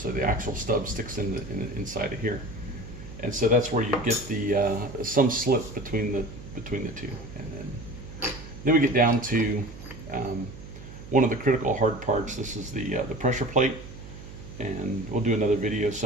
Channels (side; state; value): right; noise; hum, 14 dB below the sound